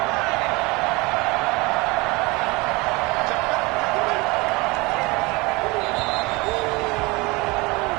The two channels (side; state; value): left; quieter; 24.7 dB